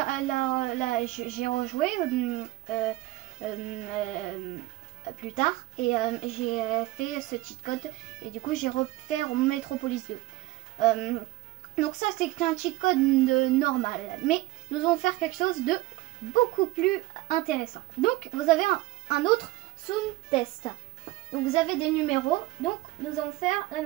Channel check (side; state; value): left; quieter; 18.6 dB